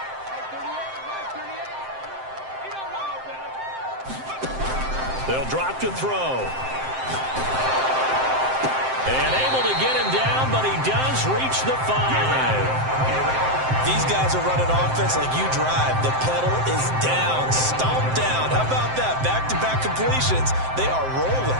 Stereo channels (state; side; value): late; left; 7.7 ms